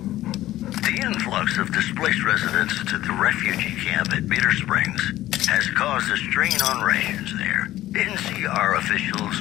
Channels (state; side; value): quieter; right; 14.8 dB